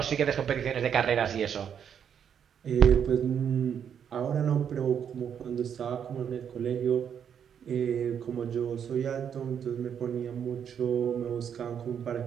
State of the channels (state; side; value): quieter; left; 8.2 dB